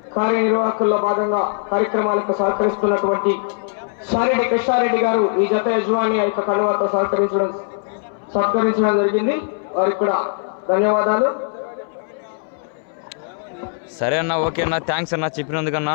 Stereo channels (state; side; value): silent; right; 62 dB below the other